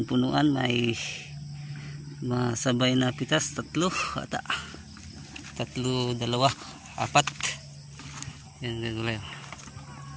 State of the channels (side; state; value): both; identical; correlation 1.00